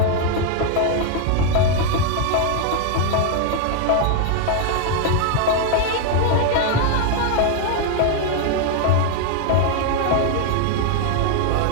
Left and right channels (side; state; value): both; different; correlation 0.00